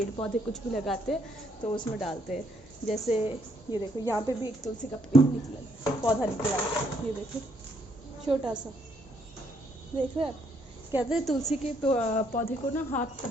पौधे कुछ भी लगाते हैं तो उसमें डालते हैं। जैसे ये देखो, यहाँ पे भी एक तुलसी का पेड़ निकला, पौधा निकला, ये देखो छोटा सा, देख रहे हैं आप। कहते हैं तुलसी के पौधे को ना हाथ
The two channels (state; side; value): normal; both; correlation 0.71